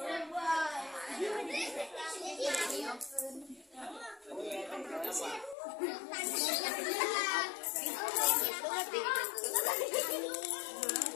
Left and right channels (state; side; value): drops out; right; at 5.6 s